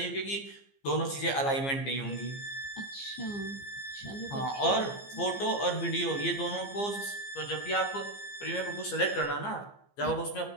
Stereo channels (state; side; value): late; right; 15 ms